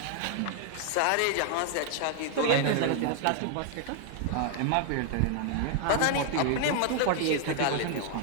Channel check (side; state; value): both; different; correlation 0.00